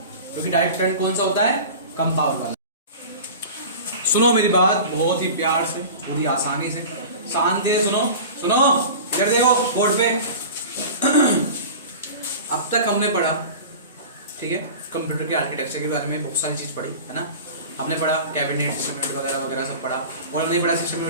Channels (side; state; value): both; inverted; correlation -0.35